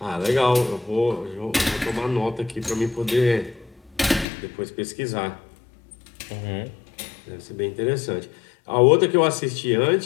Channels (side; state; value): right; drops out; at 4.2 s